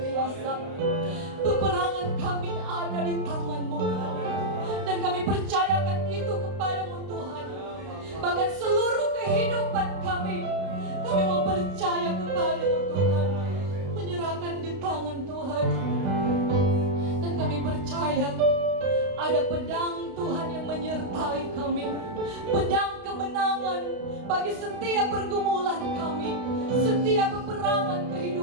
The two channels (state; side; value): late; left; 32 ms